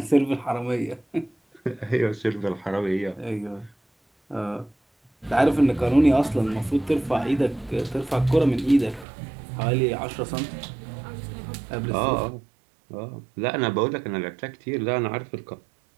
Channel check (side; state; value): left; drops out; at 9.1 s